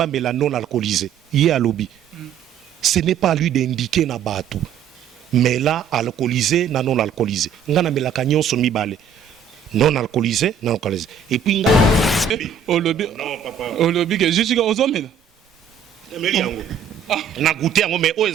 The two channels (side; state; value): left; quieter; 7.2 dB